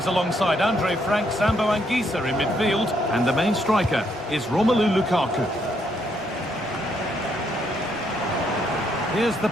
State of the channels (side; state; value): both; normal; correlation 0.74